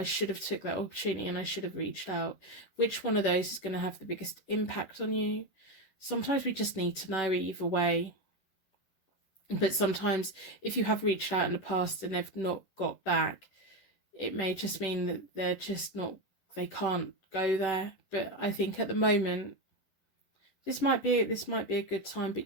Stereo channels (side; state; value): right; late; 10 ms